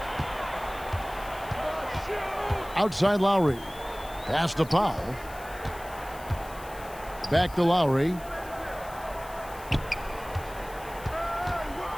Outside Lowry. Pass to Powell. Back to Lowry.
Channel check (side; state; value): left; noise; hiss, 19 dB below the sound